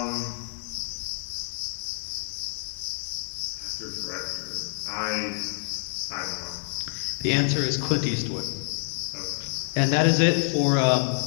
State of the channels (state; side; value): silent; right; digital silence